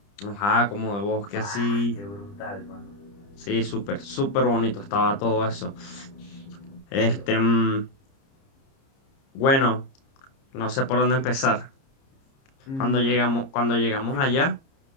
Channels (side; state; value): right; late; 30 ms